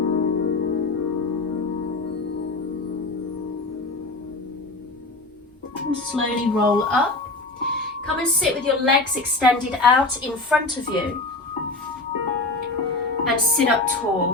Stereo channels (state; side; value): quieter; right; 3.1 dB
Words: And slowly roll up. Come and sit with your legs extended out in front of you. And sit up